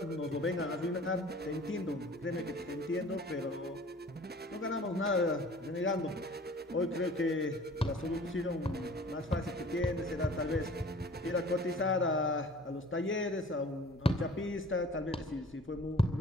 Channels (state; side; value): normal; both; correlation 0.48